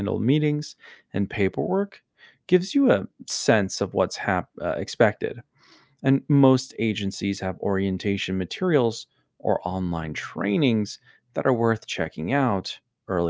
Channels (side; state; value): both; identical; correlation 1.00